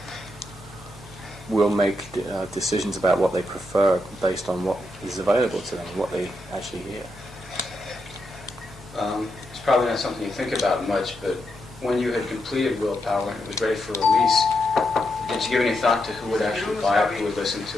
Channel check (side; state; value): both; normal; correlation 0.83